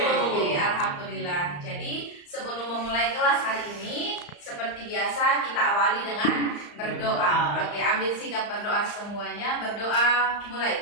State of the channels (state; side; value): late; right; 35 ms